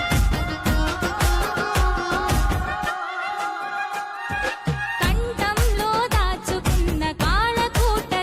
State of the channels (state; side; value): identical; both; correlation 1.00